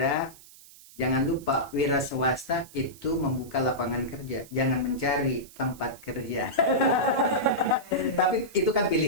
Jangan lupa wira swasta itu membuka lapangan kerja, jangan mencari tempat kerja. Tapi itu kan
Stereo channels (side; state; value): right; noise; hiss, 21 dB below the sound